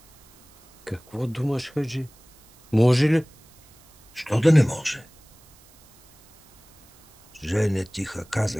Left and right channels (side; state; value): right; noise; hiss, 28 dB below the sound